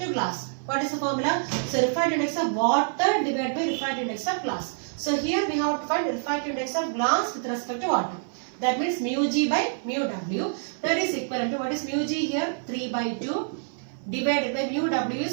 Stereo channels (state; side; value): silent; left; 56 dB below the other